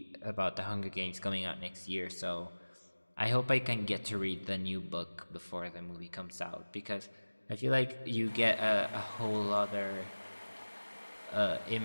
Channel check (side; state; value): both; inverted; correlation -1.00